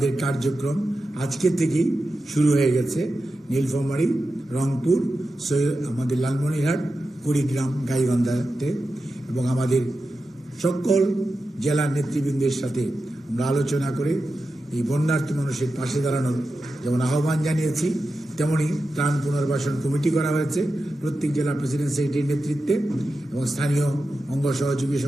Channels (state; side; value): normal; both; correlation 0.91